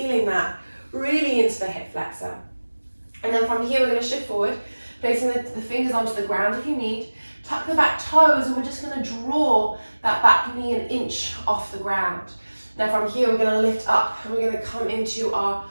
that really into the hip flexor. And then from here, we're going to shift forward, placing the fingers onto the ground if you need. Tuck the back toes, and we're just going to draw that back knee an inch off the ground. Now from here, we're going to lift up, and we're going to come into our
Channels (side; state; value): both; inverted; correlation -1.00